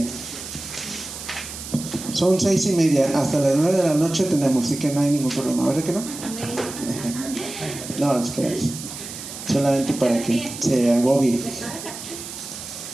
Son 6:30, hasta las 9 de la noche tenemos, así que no hay ningún problema, ¿verdad que no? No, es que solamente para que se agobie.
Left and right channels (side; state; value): right; noise; hiss, 10 dB below the sound